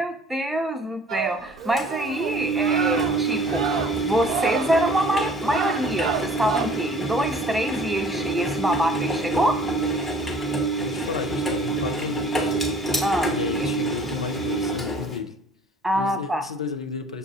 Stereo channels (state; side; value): normal; both; correlation 0.51